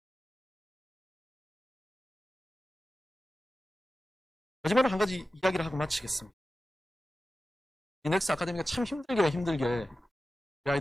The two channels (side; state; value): both; normal; correlation 0.94